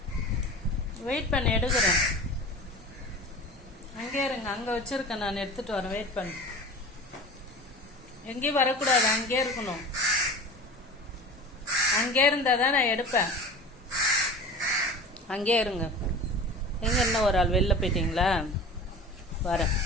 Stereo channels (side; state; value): both; normal; correlation 0.36